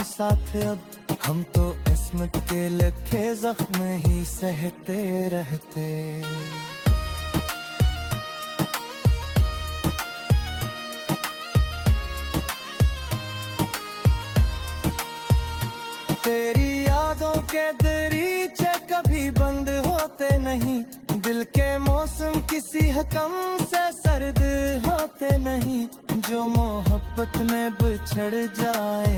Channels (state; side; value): identical; both; correlation 1.00